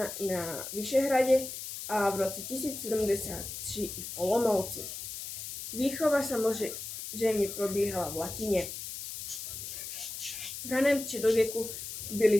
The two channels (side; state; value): left; noise; hiss, 8 dB below the sound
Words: i na Vyšehradě a v roce 1073 i v Olomouci. Výchova samozřejmě probíhala v latině. V raném středověku